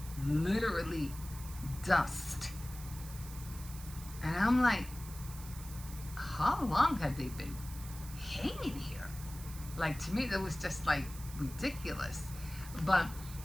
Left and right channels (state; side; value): noise; right; hiss, 14 dB below the sound